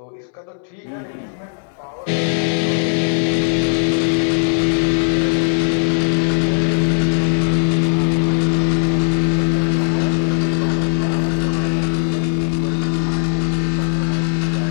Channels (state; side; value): silent; right; 67 dB below the other